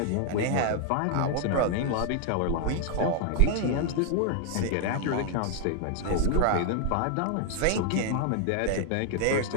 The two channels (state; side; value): different; both; correlation 0.00